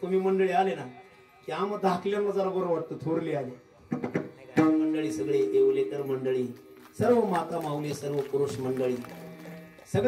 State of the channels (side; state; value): both; identical; correlation 1.00